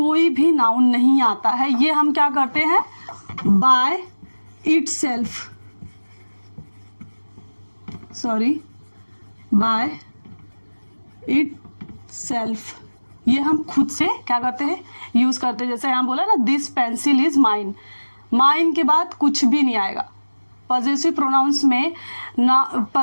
भी नाउन नहीं आता है। ये हम क्या करते हैं, बाय इटसेल्फ, बाय इटसेल्फ ये हम खुद से क्या करते हैं, यूज़ करते हैं। जैसे यहाँ बोला ना, this pencil is mine, mine के बाद कुछ भी नहीं आएगा। पॉजेसिव प्रोनाउंस में ना,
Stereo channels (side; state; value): both; inverted; correlation -1.00